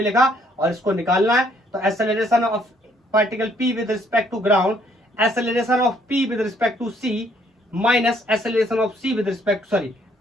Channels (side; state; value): both; normal; correlation 0.66